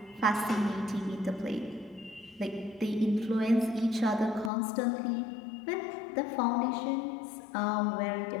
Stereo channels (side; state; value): right; drops out; at 4.5 s